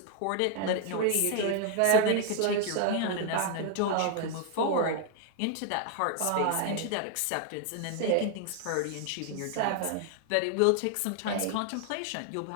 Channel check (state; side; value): different; both; correlation 0.00